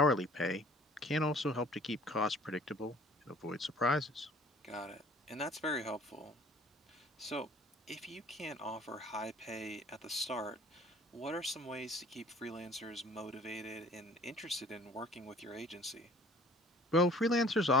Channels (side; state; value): both; normal; correlation 0.52